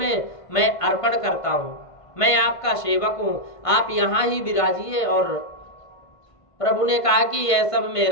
मैं अर्पण करता हूं, मैं आपका सेवक हूं, आप यहां ही विराजिए। और प्रभु ने कहा कि यह सब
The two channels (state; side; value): late; right; 1.5 ms